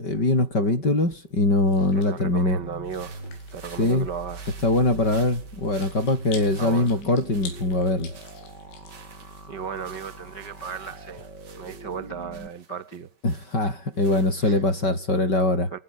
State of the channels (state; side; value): late; right; 5.2 ms